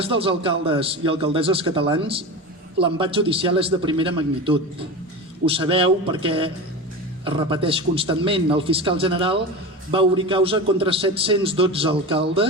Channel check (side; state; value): both; normal; correlation 0.26